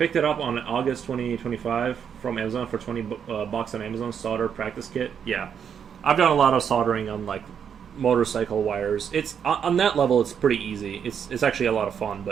it up on August 2025 from Amazon for 20 bucks on Amazon, solder practice kit. Yeah, I've done a lot of soldering on like motorcycle wires. It's on that level, it's pretty easy. It's actually a lot of fun.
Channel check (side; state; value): left; quieter; 7.8 dB